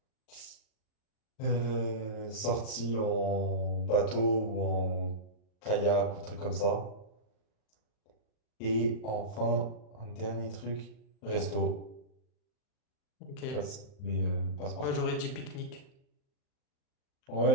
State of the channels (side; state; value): right; late; 39 ms